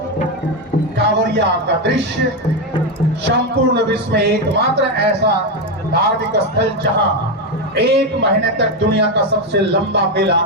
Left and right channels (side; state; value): both; normal; correlation 0.08